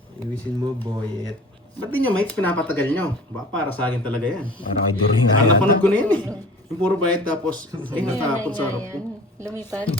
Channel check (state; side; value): normal; both; correlation 0.43